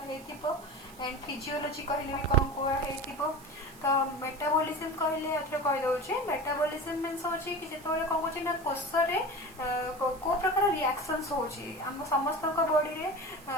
हेतिबो एंड फिजियोलॉजी कहले भी कोन पढ़ा हेतिबो तो मेटाबॉलिज्म कहले अथरे कहि दोची मेटाबॉलिज्म मींस होची कि जेतोले कोन होची ना कोष रे को प्रकार रिएक्शंस होची हम समस्त को बॉडी रे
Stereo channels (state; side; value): noise; right; hiss, 22 dB below the sound